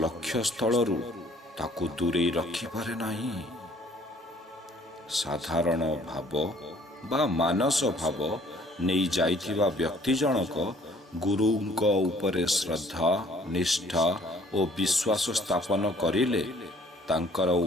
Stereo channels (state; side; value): normal; both; correlation 0.58